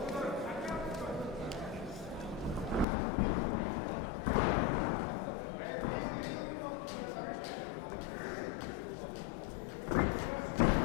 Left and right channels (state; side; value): drops out; right; at 2.9 s